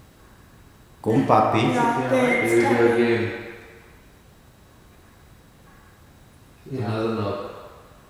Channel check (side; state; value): both; identical; correlation 1.00